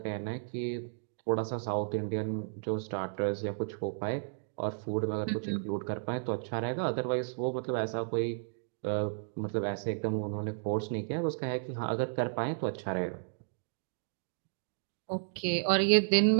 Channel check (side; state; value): left; silent; digital silence